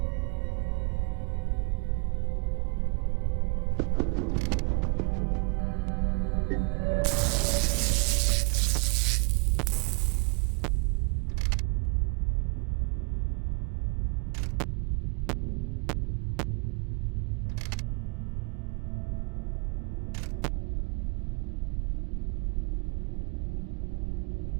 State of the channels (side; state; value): left; quieter; 34.0 dB